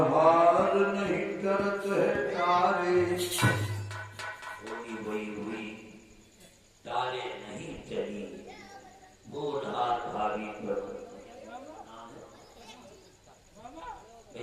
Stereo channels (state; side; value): identical; both; correlation 1.00